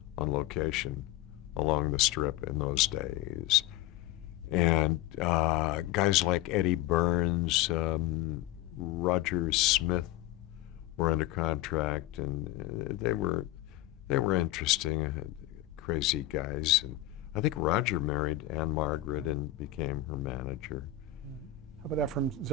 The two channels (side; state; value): right; quieter; 13.5 dB